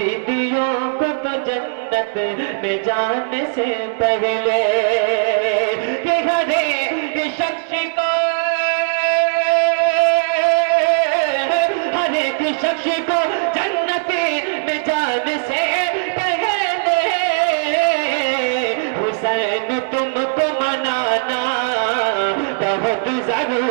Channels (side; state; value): left; silent; digital silence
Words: तो जन्नत में जाने से पहले, कि हर एक शख्स को, हर एक शख्स को जन्नत में जाने से पहले, हुसैन तुमको मनाना बहुत